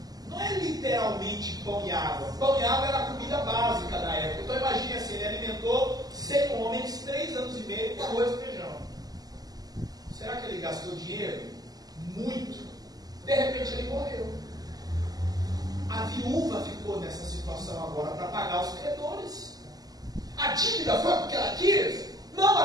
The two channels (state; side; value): late; left; 0.18 ms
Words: Não é literalmente pão e água. Pão e água era a comida básica da época. Então imagine assim, ele alimentou 100 homens 3 anos e meio com arroz e feijão. Será que ele gastou dinheiro? Muito. De repente ele morreu. A viúva ficou nessa situação agora para pagar os credores. A dívida foi porque ela quis? Não,